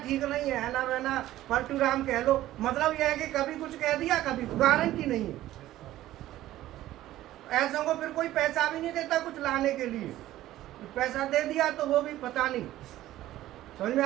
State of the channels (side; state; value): left; quieter; 14.6 dB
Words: ठीक नहीं है, हैना बहना पलटू राम कह लो। मतलब यह है कि कभी कुछ कह दिया, कभी गारंटी नहीं है। ऐसों को फिर कोई पैसा भी नहीं देता कुछ लाने के लिए, पैसा दे दिया तो वो भी पता नहीं। समझ में